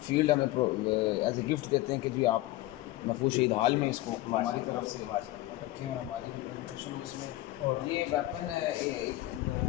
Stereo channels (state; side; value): quieter; right; 17.1 dB